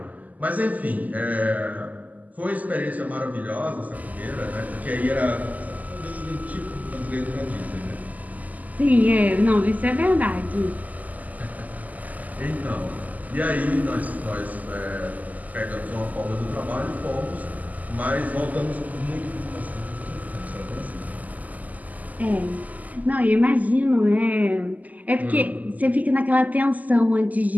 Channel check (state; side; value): late; left; 0.079 ms